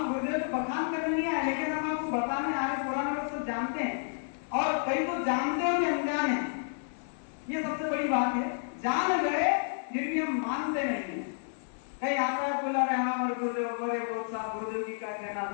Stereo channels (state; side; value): silent; right; 57 dB below the other